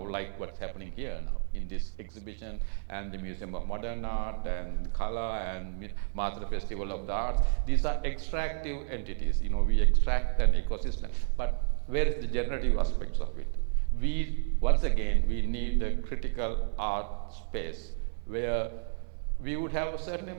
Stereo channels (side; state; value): left; silent; digital silence